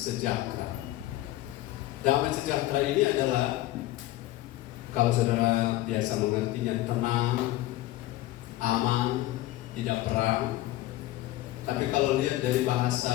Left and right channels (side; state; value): right; quieter; 16.2 dB